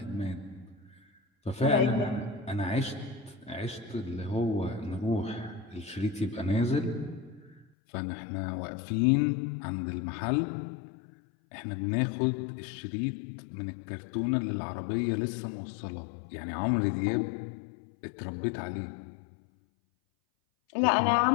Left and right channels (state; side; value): drops out; right; at 7.7 s